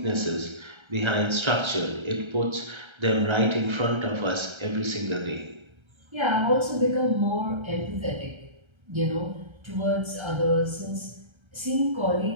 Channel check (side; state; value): left; late; 1.3 ms